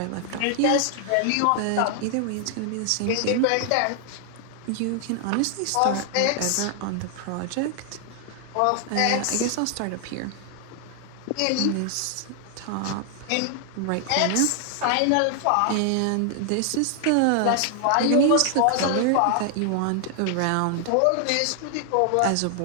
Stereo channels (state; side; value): different; both; correlation 0.00